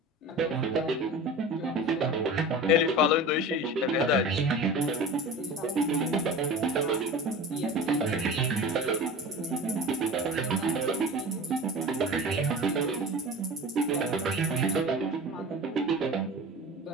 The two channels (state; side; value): normal; both; correlation 0.35